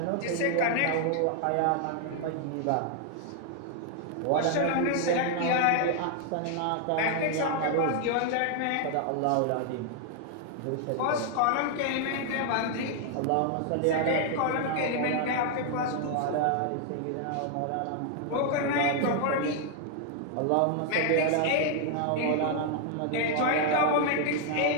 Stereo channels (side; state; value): both; different; correlation 0.00